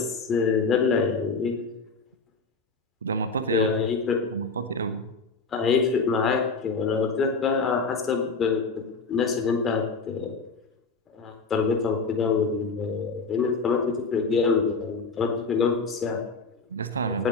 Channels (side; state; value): right; quieter; 4.3 dB